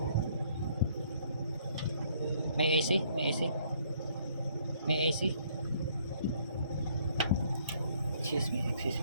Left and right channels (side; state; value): both; inverted; correlation -0.64